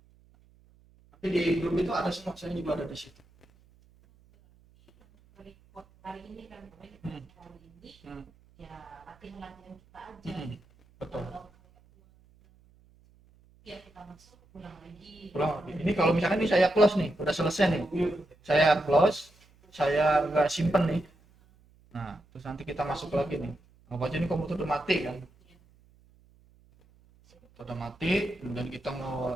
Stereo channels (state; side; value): noise; right; hum, 30 dB below the sound